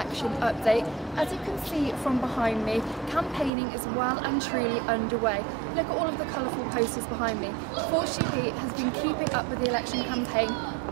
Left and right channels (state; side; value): drops out; left; at 3.5 s